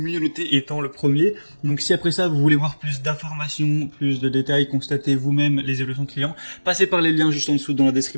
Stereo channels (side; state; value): both; inverted; correlation -1.00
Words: noté étant le premier. Donc si après ça vous voulez voir plus d'informations, plus de détails, constatez vous-même les évolutions de clients, passez par les liens juste en dessous dans la